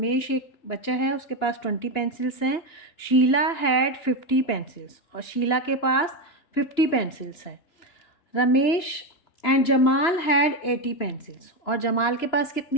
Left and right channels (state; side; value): late; right; 2.9 ms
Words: एक बच्चा है, उसके पास 20 पेंसिल्स हैं। शीला हैड 50 पेंसिल्स और शीला के पास 50 पेंसिल्स हैं। Ramesh and Jamal had 80 pencils और जमाल के पास